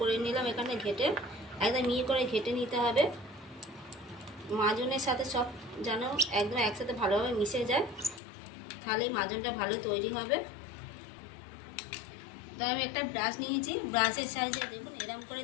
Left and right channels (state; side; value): drops out; right; at 8.2 s